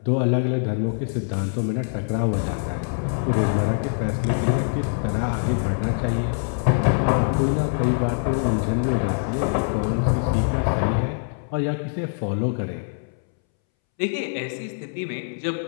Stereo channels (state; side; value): silent; right; 63 dB below the other